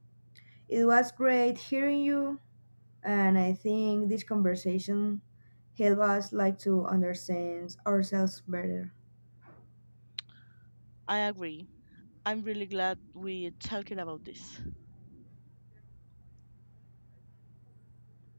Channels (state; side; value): inverted; both; correlation -1.00